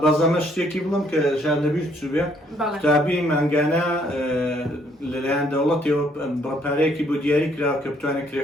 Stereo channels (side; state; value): both; normal; correlation 0.67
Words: بەزەمە شتێکی بڵم کە ژان لەبیر چوو بێ قوتابی مانگانە لەلایەن دەوڵەتەوە بڕەپارەیەکی بۆ دیاری کراوە کە بتوانێت